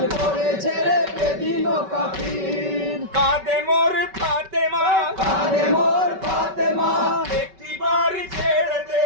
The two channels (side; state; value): left; late; 5.2 ms